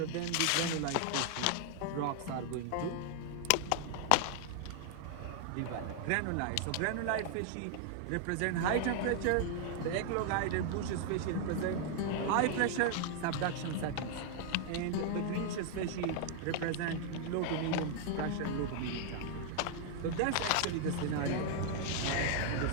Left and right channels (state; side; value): different; both; correlation 0.00